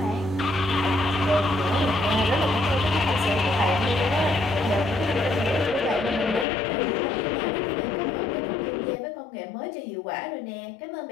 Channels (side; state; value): right; drops out; at 6.5 s